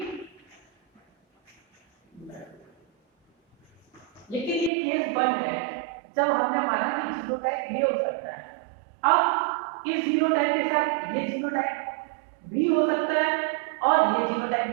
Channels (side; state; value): left; drops out; at 4.7 s